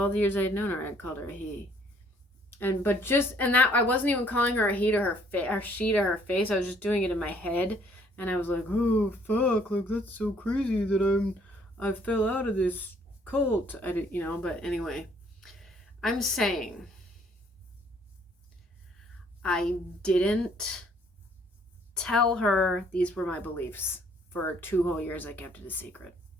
the years I had known her, I had called her a he, and that I wasn't even calling her a he to her face or she to her face. I was just doing it in my head, and I was like, oh fuck, like that's so crazy that I fell out of this cult. I did, but anyway, I'm saying I didn't tell her these were my beliefs. For 2 whole years, I kept it a secret.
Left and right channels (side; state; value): both; normal; correlation 0.62